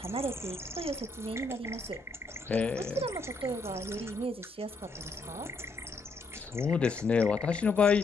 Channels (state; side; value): quieter; right; 3.5 dB